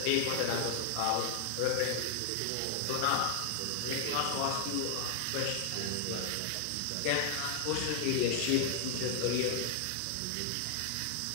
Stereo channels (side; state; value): both; different; correlation 0.00